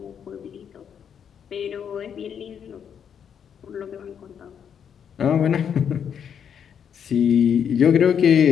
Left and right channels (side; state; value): right; quieter; 8.0 dB